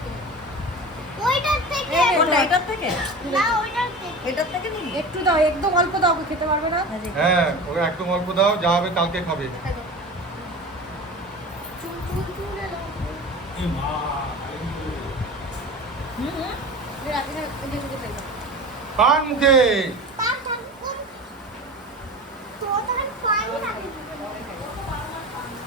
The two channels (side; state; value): both; normal; correlation 0.33